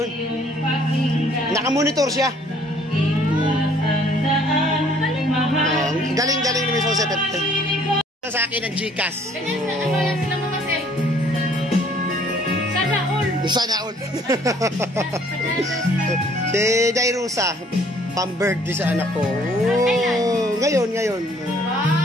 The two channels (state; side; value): normal; both; correlation 0.60